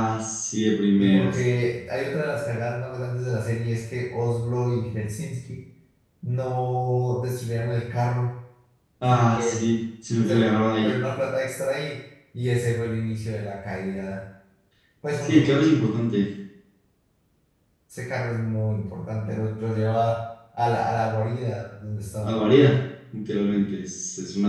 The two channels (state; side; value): identical; both; correlation 1.00